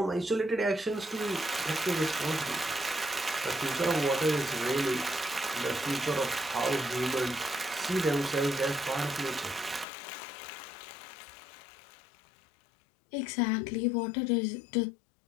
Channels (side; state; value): right; drops out; at 9.9 s